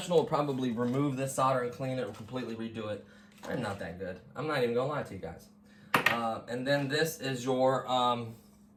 would probably remove this solder and clean it or completely redo it. They're not that good. I'm not even gonna lie to you guys. And then this is your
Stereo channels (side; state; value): both; identical; correlation 1.00